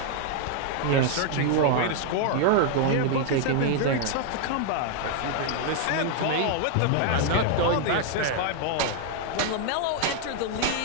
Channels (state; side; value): different; both; correlation 0.00